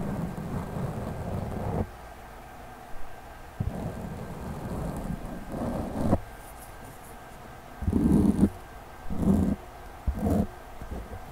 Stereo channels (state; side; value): identical; both; correlation 1.00